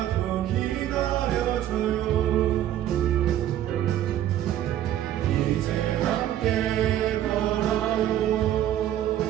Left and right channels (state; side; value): quieter; left; 12.0 dB